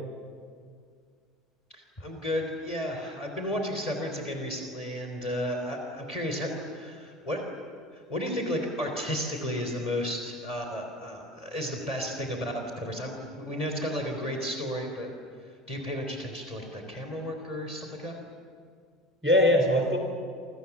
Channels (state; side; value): normal; both; correlation 0.37